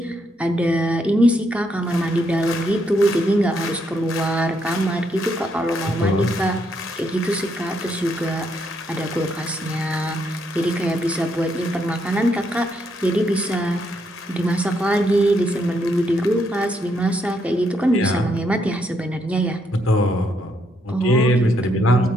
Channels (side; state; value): both; normal; correlation 0.76